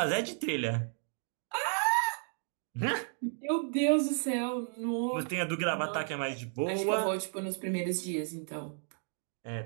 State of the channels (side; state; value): left; silent; 56 dB below the other